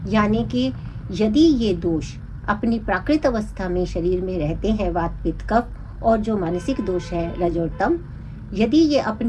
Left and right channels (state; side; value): identical; both; correlation 1.00